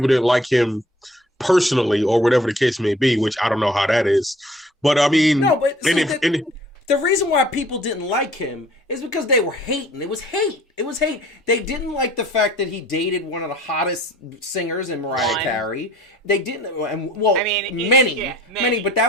didn't like him personally or whatever the case may be, which I don't know how that is. But I mean, no, but the reason why people didn't like him is because they were hating. It was hate. They didn't like the fact that he dated one of the hottest singers in Mariah Carey. They didn't, and well, I mean, many, but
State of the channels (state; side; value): normal; both; correlation 0.53